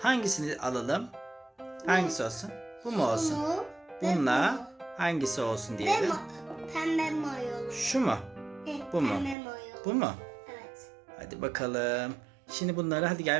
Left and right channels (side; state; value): left; drops out; at 9.3 s